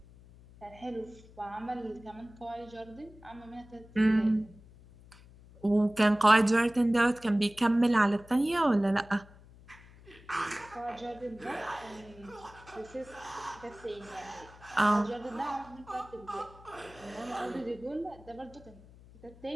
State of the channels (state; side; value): noise; left; hum, 22 dB below the sound